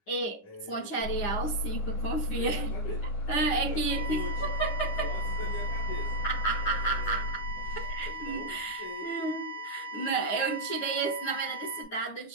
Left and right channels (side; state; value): right; late; 9.9 ms